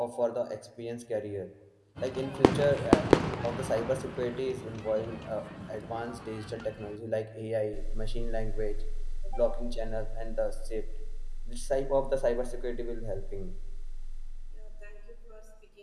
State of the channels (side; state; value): both; identical; correlation 1.00